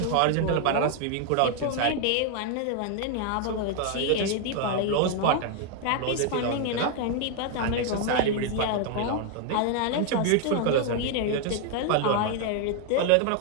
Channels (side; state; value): both; different; correlation 0.00